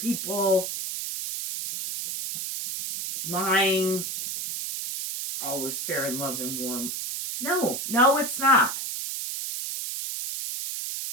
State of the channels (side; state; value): right; noise; hiss, 5 dB below the sound